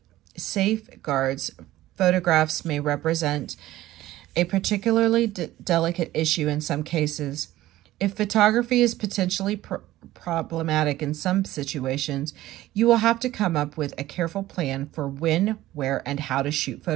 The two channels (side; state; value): left; quieter; 15.6 dB